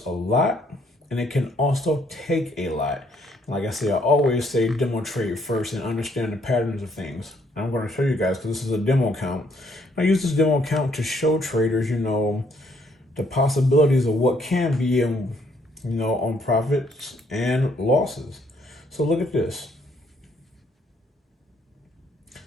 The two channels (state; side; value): normal; both; correlation 0.68